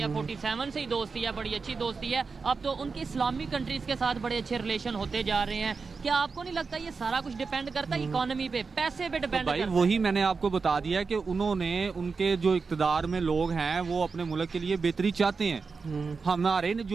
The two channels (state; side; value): quieter; left; 4.7 dB